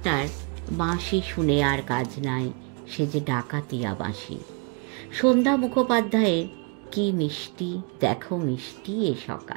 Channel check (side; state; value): left; quieter; 34.5 dB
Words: বাঁশি শুনে আর কাজ নাই সে যে ডাকাতিয়া বাঁশি, সন্ধ্যা মুখোপাধ্যায়ের কি মিষ্টি দেখো মিষ্টি এ